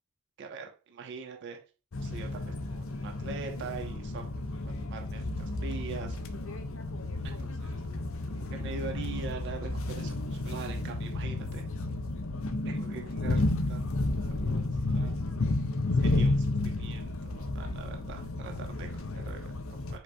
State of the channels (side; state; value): both; normal; correlation 0.74